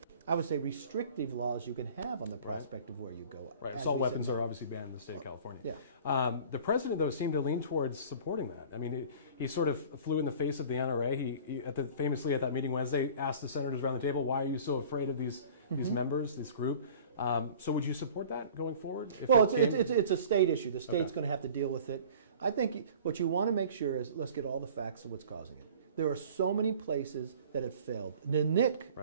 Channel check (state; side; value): inverted; both; correlation -0.44